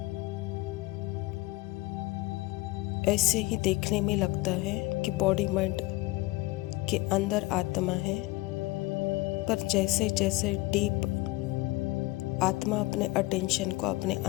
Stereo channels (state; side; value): quieter; right; 21.0 dB